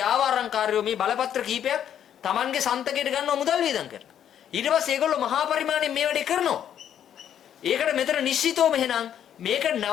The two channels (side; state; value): right; quieter; 9.7 dB